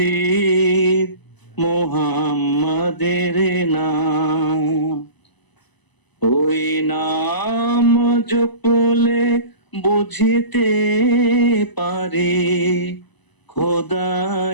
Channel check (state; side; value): late; right; 1.0 ms